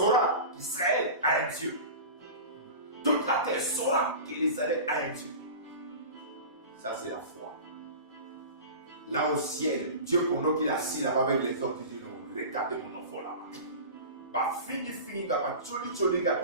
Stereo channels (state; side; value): inverted; both; correlation -0.33